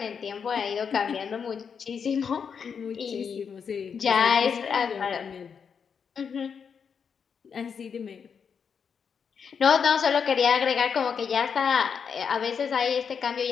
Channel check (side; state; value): right; quieter; 6.6 dB